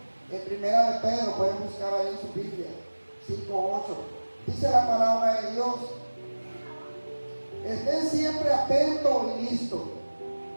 en 1 Pedro, pueden buscar ahí en su Biblia, 5:8, dice la palabra de Dios: estén siempre atentos y listos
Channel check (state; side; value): inverted; both; correlation -1.00